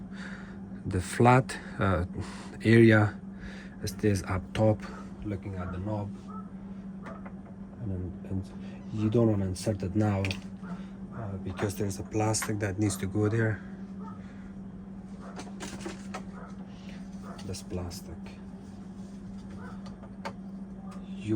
the flat area stays up top looking at the knob, and you don't want to insert it now because there's a plastic that needs to go there. This plastic, you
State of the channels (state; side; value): identical; both; correlation 1.00